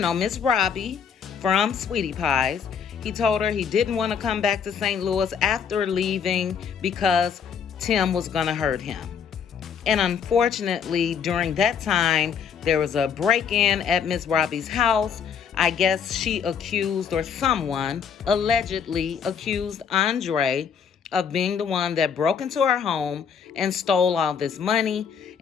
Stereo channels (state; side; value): quieter; right; 7.1 dB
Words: Robbie from Sweetie Pies, he told her he didn't want to come back to St. Louis after leaving because Tim was going to hurt him. And unfortunately, during that time, there was a break-in at Miss Robbie's house. I guess she accused, or someone allegedly accused Andre of being the one that broke into her home and stole all this money.